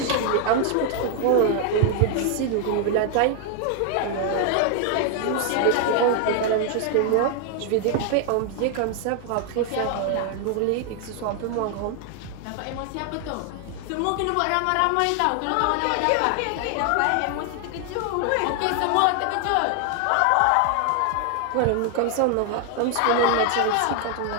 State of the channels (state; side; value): different; both; correlation 0.00